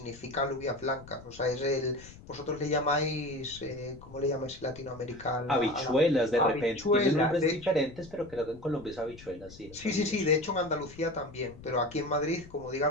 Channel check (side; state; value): left; noise; rumble, 19 dB below the sound